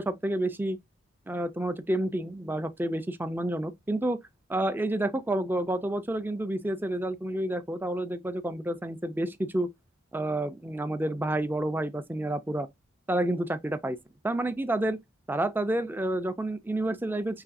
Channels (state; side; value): normal; both; correlation 0.84